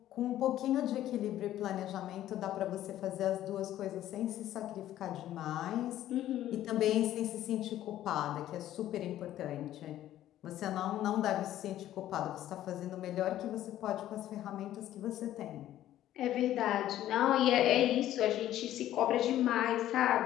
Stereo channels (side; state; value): right; quieter; 12.9 dB